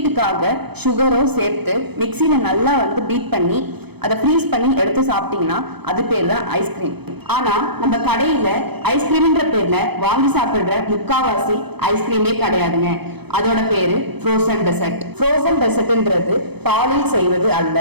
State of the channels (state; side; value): late; left; 0.98 ms